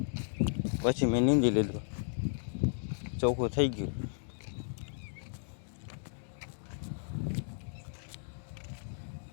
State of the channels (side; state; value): right; silent; digital silence